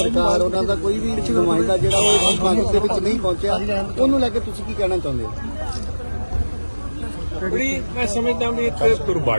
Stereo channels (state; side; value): inverted; both; correlation -1.00